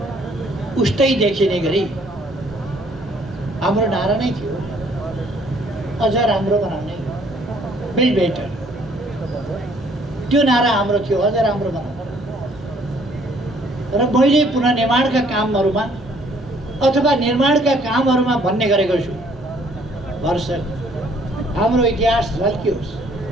उस्तै देखिने गरी हाम्रो नारा नै थियो, अझ राम्रो बनाउने, बिल्ड बेटर। त्यो नारा हाम्रो थियो, अझ राम्रो बनाउने। र मैले पुनर्निर्माणका कामहरूमा अथवा निर्माणका कामहरूमा भन्ने गरेको छु, भरसक हाम्रो इतिहास झल्कियोस्,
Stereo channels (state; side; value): normal; both; correlation 0.62